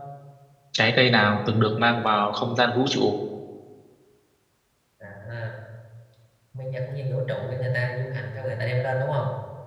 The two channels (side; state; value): both; identical; correlation 1.00